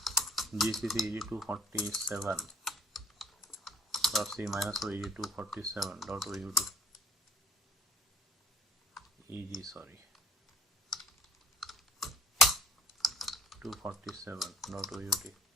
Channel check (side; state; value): both; normal; correlation 0.54